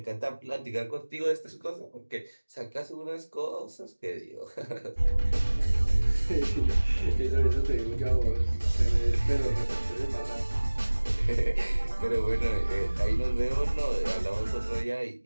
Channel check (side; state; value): both; inverted; correlation -1.00